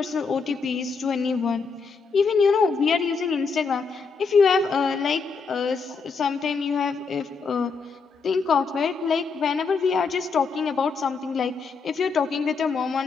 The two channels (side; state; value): right; quieter; 4.9 dB